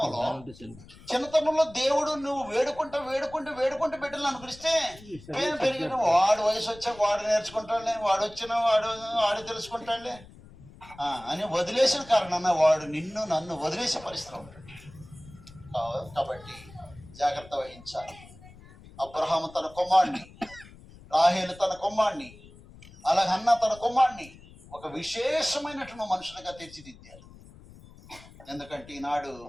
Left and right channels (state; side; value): noise; left; rumble, 21 dB below the sound